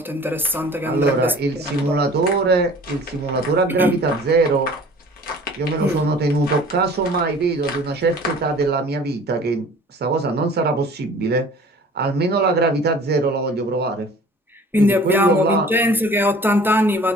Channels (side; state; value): both; normal; correlation 0.47